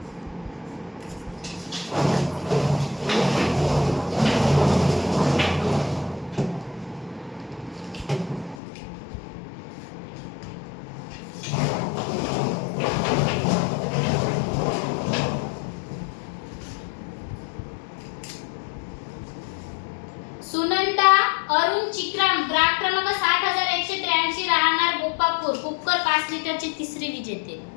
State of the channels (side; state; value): right; drops out; at 8.6 s